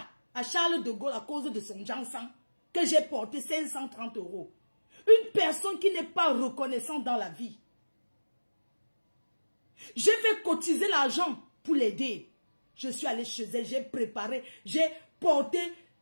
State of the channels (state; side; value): inverted; both; correlation -1.00